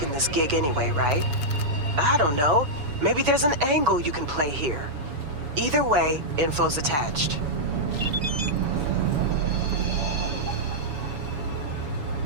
this gig anyway, right? I don't know. Maybe there's an angle you can play here. Either way, info's attached.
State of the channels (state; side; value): late; left; 7.1 ms